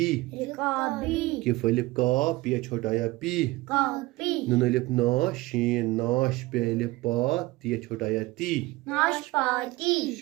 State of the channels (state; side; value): quieter; left; 20.2 dB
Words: رکابی کف الف کا پیا چھوٹا یا پی کاپی نون الف نا شین ناش پہ الف پا تیا چھوٹا یا تی ناشپاتی